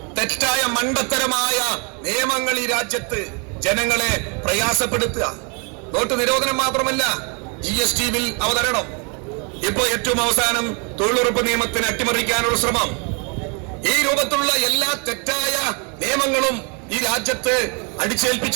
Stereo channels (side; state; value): left; quieter; 34.8 dB